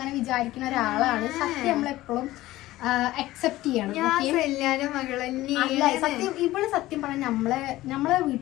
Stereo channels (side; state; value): right; quieter; 16.6 dB